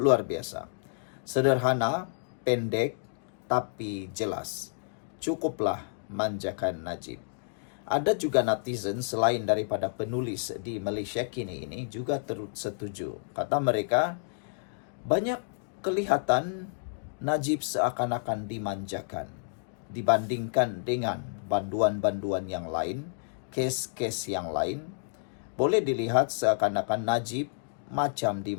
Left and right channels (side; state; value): right; silent; digital silence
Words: biasa. Sederhana, pendek, tapi jelas. Cukuplah manjakan Najib. Ada juga netizen selain daripada penulis di Malaysia kini ini juga turut setuju. Kata mereka, banyak kelihatan Najib seakan-akan dimanjakan dibandingkan dengan banduan-banduan yang lain, kes-kes yang lain. Boleh dilihat seakan-akan Najib macam